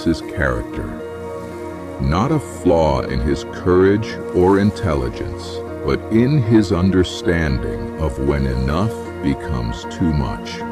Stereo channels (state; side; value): identical; both; correlation 1.00